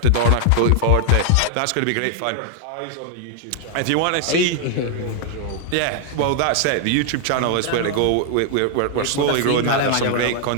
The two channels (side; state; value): both; different; correlation 0.00